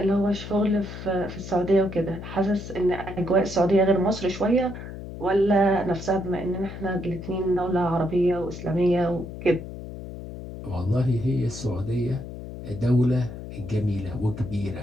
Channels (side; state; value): left; noise; hum, 10 dB below the sound